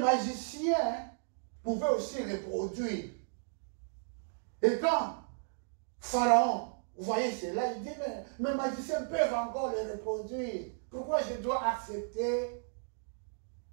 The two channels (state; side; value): silent; left; digital silence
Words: pouvaient aussi reproduire. Et quand Pharaon, vous voyez cela, il dit, mais mes magiciens peuvent encore les reproduire. Pourquoi je dois accepter